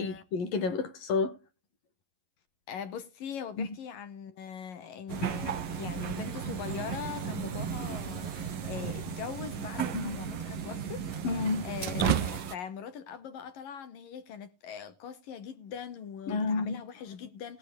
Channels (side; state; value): right; late; 11 ms